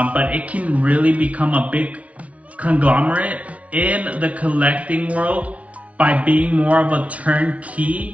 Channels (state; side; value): late; left; 0.066 ms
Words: it can really become a big conglomerate in the collecting world by being more of a